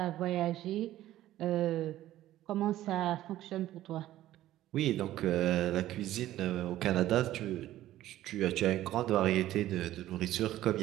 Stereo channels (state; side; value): quieter; left; 14.1 dB